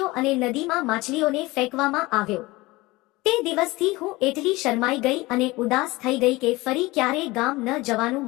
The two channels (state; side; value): quieter; right; 21.1 dB